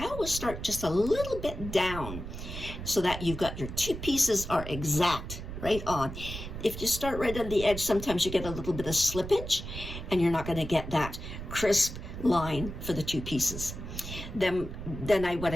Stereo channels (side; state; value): right; noise; rumble, 8 dB below the sound